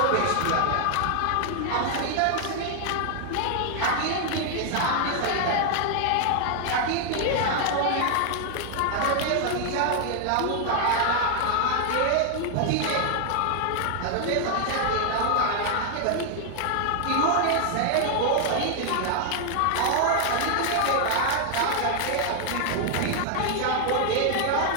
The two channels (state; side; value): different; both; correlation 0.00